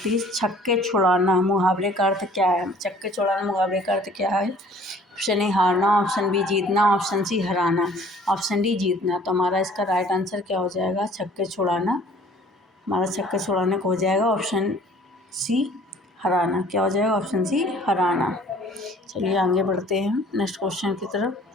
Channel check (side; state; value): both; normal; correlation 0.53